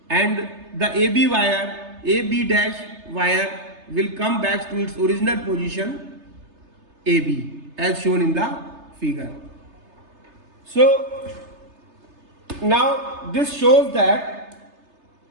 and the AB wire, AB dash wire will come back to its original position AB as shown in the figure. So now this shows that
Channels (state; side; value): late; left; 3.3 ms